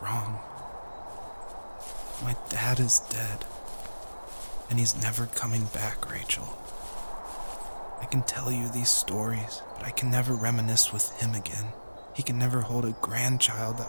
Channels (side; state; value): both; inverted; correlation -1.00